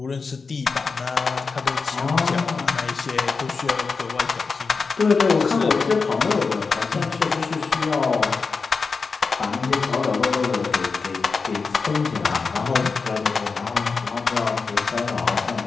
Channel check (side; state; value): right; quieter; 4.7 dB